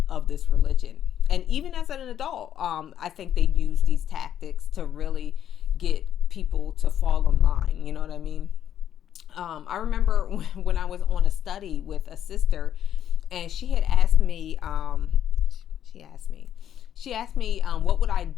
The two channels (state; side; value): quieter; right; 10.2 dB